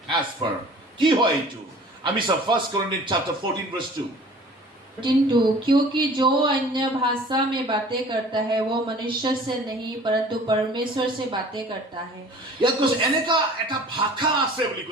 As per কি হয় এইটো, আমি চাওঁ 1 Corinthians chapter 14 verse 2. क्योंकि जो अन्य भाषा में बातें करता है वो मनुष्य से नहीं परंतु परमेश्वर से बातें करता है। ইয়াত কৈছে এনেকা এটা ভাষা আছে বুলি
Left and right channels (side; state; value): both; normal; correlation 0.47